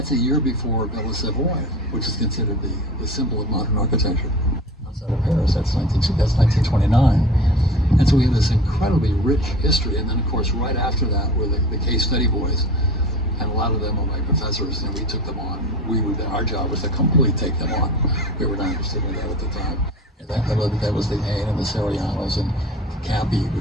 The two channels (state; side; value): normal; both; correlation 0.37